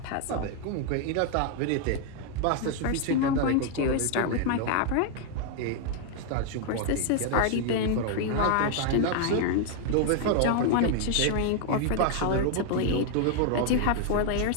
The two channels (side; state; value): both; different; correlation 0.00